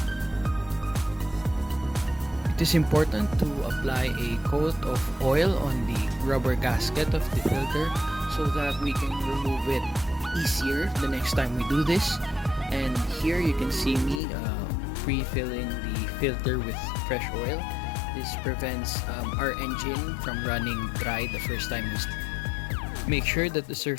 It is important to apply a coat of oil on the rubber gasket of the filter so that we can remove it easier the next time we do this. And here you can see me pre-filling the filter with fresh oil. This prevents our engine from running dry the first time we start. Make sure that the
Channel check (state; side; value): drops out; right; at 14.2 s